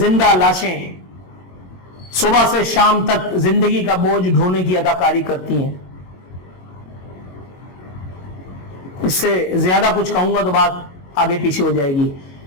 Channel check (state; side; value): late; right; 22 ms